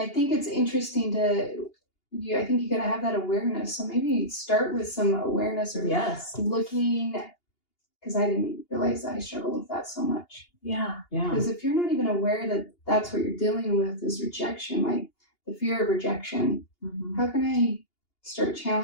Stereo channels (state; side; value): late; right; 2.8 ms